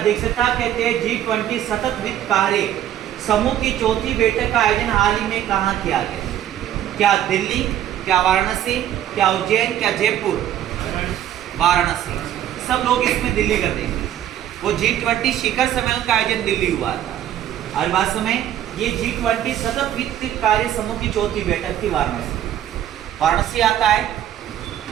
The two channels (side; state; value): left; quieter; 11.4 dB